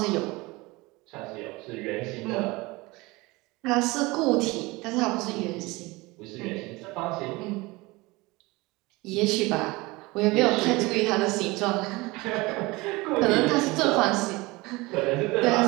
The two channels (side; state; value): left; quieter; 22.8 dB